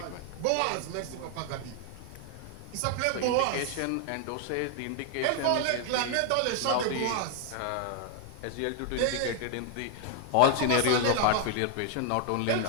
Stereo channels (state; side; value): different; both; correlation 0.00